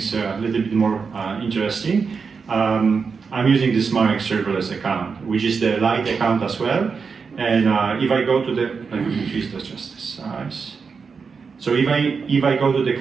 a little bit more interesting. I'm using this Marek serverless account, which is the light account as well. And if I go to the, let me increase just the size. So if I go to the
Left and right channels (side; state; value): left; quieter; 5.4 dB